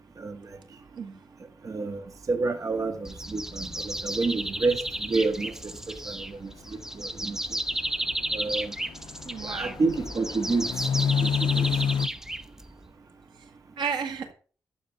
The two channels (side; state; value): both; normal; correlation 0.78